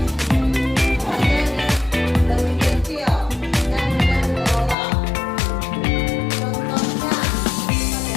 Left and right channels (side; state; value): right; drops out; at 4.8 s